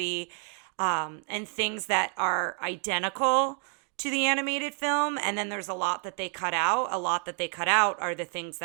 and things that are identical to the animated film, and then there's a lot that they cut out. A lot that they cut out are the things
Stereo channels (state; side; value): quieter; left; 38.9 dB